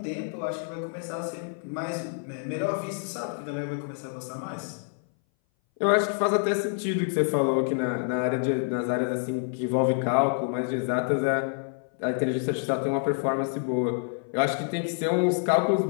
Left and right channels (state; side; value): silent; right; 58 dB below the other